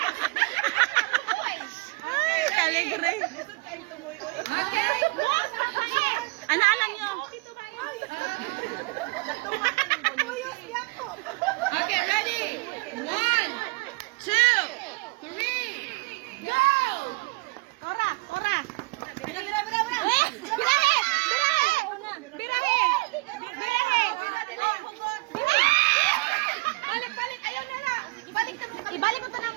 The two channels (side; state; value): left; quieter; 25.7 dB